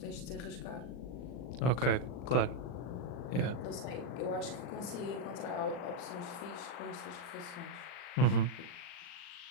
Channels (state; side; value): late; right; 40 ms